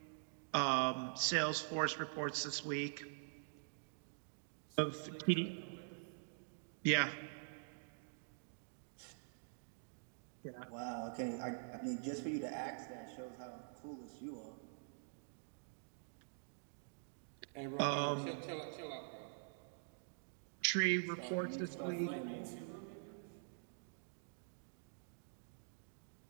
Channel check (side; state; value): left; silent; digital silence